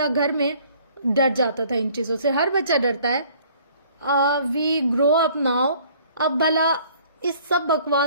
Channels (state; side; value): inverted; both; correlation -0.56